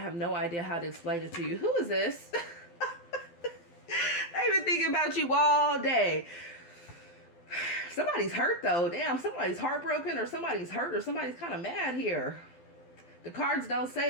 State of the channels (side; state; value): right; late; 12 ms